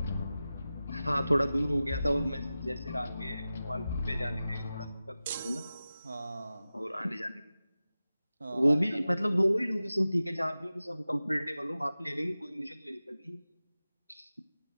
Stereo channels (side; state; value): both; inverted; correlation -0.95